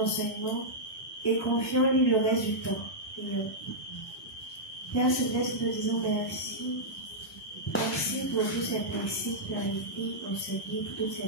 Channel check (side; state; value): both; normal; correlation -0.09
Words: et confions-lui le reste du temps. Prions. Père Céleste, nous disons merci. Merci pour tous ces principes clarifiés, enseignés, pour toutes